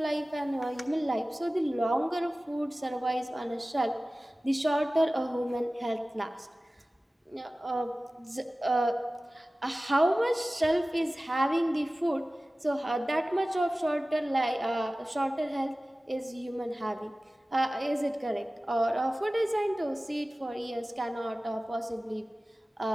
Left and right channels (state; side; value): normal; both; correlation 0.97